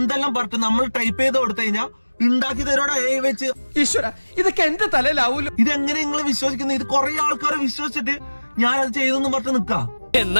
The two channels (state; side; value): inverted; both; correlation -1.00